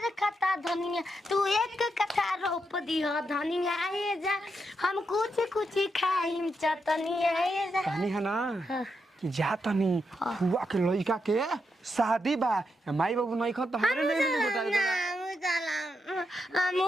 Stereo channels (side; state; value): both; normal; correlation 0.83